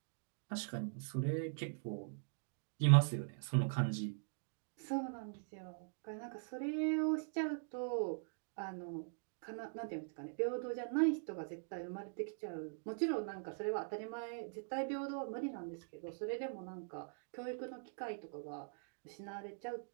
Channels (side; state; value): left; silent; digital silence